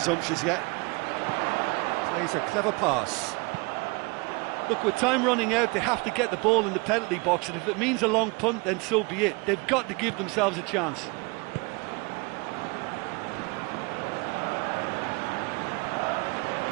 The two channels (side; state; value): left; quieter; 28.5 dB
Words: yet. Plays a clever pass. Look, with time running out, they have to get the ball in the penalty box, and if it means a long punt, then so be it. They've got to give themselves a chance.